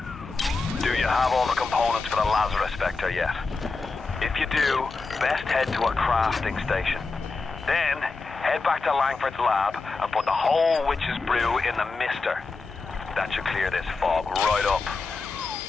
Do you have all the components for the Lazarus Vector yet? If you do, best head to a crafting station. Then, head back to Langford's lab and put the whole witch's brew in the mister. That should clear this fog right up.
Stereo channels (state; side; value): quieter; right; 4.1 dB